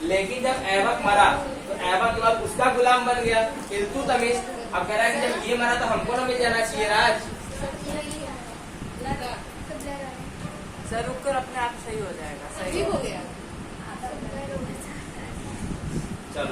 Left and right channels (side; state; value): both; identical; correlation 1.00